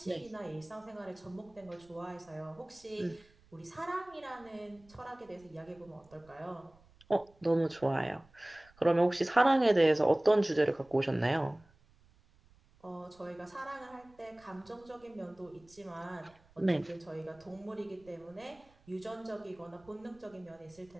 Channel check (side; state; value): right; noise; rumble, 29 dB below the sound